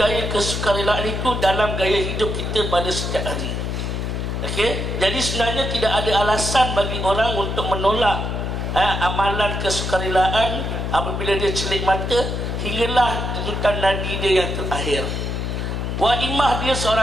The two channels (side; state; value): left; noise; hum, 2 dB below the sound